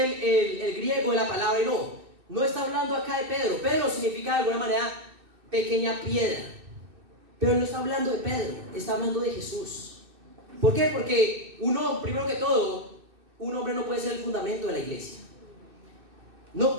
griego de la palabra y no. No está hablando acá de Pedro. Pedro significa de alguna manera pequeña piedra. Pero no está hablando de Pedro, está hablando de Jesús. ¿Por qué? Porque primero que todo, un hombre no puede ser el fundamento de la iglesia. No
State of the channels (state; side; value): late; left; 2.6 ms